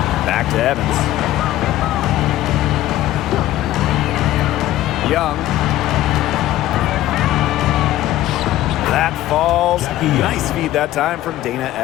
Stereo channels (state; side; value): quieter; right; 14.5 dB